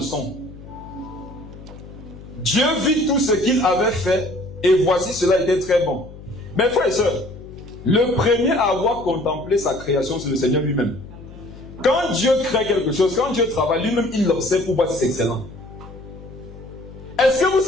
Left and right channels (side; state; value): left; noise; hum, 16 dB below the sound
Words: son. Dieu vit tout ce qu'il avait fait, et voici, cela était très bon. Mes frères et sœurs, le premier à avoir contemplé sa création, c'est le Seigneur lui-même. Quand Dieu crée quelque chose, quand Dieu travaille, lui-même, il l'observe pour voir si c'est excellent. Est-ce que vous